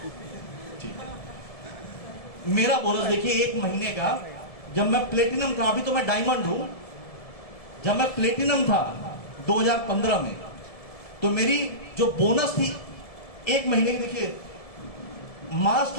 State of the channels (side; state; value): right; late; 1.7 ms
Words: ठीक है, मेरा बोनस देखिए 1 महीने का, जब मैं प्लेटिनम था, अभी तो मैं डायमंड हूं, जब मैं प्लेटिनम था 2015 में, तो मेरी जो बोनस थी 1 महीने की, देखिए मार्च